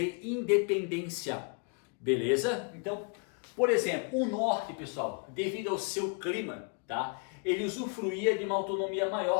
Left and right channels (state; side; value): quieter; right; 37.1 dB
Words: independência, beleza? Então, por exemplo, o Norte, pessoal, devido ao seu clima, tá? Ele usufruía de uma autonomia